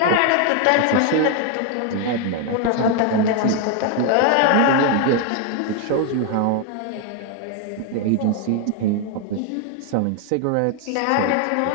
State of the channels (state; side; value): different; both; correlation 0.01